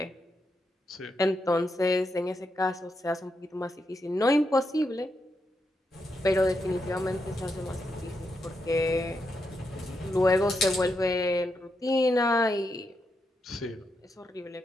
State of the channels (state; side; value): normal; both; correlation 0.83